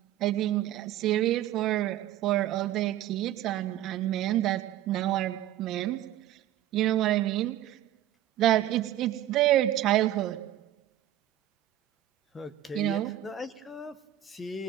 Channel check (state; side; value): quieter; left; 12.8 dB